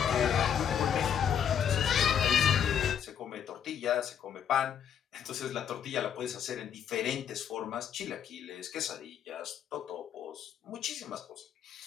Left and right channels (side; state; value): right; quieter; 8.5 dB